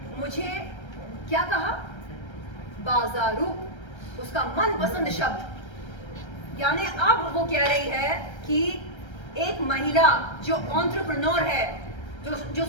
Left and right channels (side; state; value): right; late; 1.3 ms